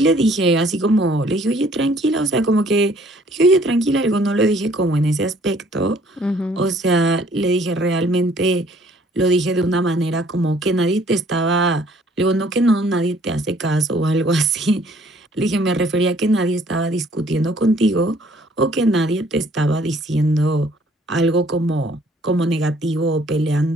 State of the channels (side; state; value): both; normal; correlation 0.59